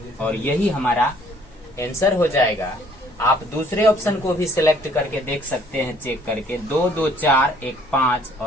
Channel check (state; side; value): normal; both; correlation 0.60